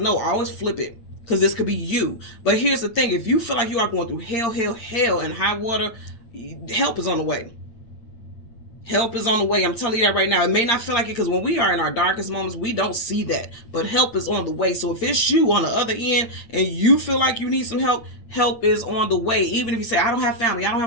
always flip it. Because this could be you. But here's the thing. If you feel like you are going through hell and high water, help is on the way. Help is on the way. I'm telling you that right now. It may not feel like it because when we are in our darkest moments, we don't see that. But help is on the way. So if it's you on the other end and you feel like you need some help, help is on the way. Even if you say, I don't have family, I don't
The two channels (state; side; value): late; right; 8.7 ms